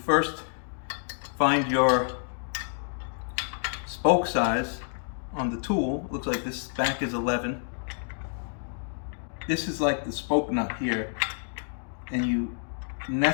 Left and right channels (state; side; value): silent; right; digital silence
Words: find your spoke size on the tool. Looks like this back is 11. This is like the spoke nut here, and you